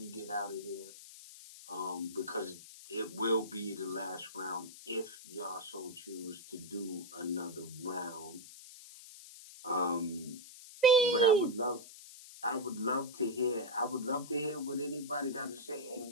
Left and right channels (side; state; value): left; noise; hiss, 16 dB below the sound